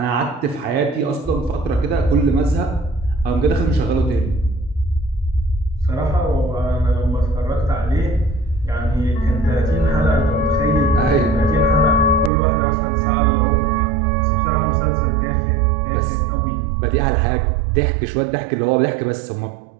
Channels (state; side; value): drops out; left; at 12.3 s